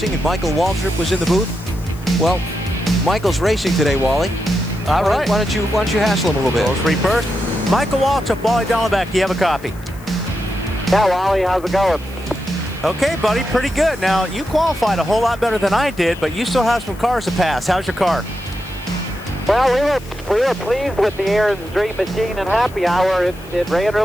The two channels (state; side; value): noise; left; hiss, 24 dB below the sound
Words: and Michael Waltrip was in the booth? Well, Michael's racing today, Wally. All right. Why don't you hassle him a little bit? Those three first. Michael Waltrip, Wally Dallenbach, do you have a copy? Yeah, Wally, how's it going? Okay, buddy, pretty good. Now, you qualified a whole lot better than I did, but you still have some cars to pass. How's your car? Well, we were pleased with the Aaron's Dream Machine and Happy Hour. It ran